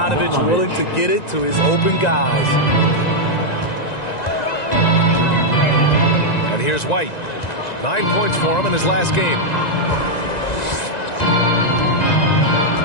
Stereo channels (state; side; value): late; right; 1.9 ms